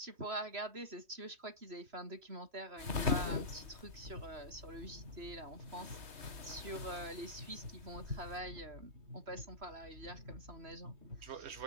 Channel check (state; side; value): late; left; 3.2 ms